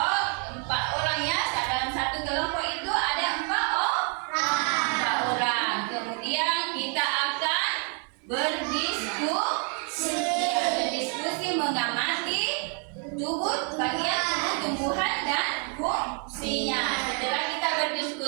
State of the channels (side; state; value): left; quieter; 39.7 dB